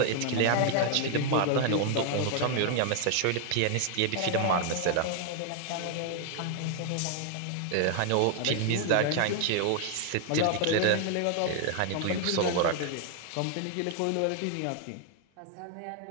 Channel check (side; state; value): both; different; correlation 0.00